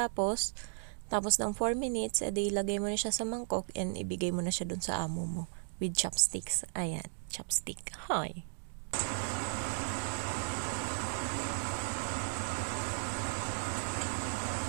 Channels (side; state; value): left; silent; digital silence